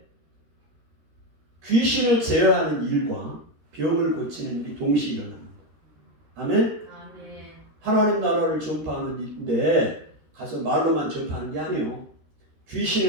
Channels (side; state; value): left; late; 13 ms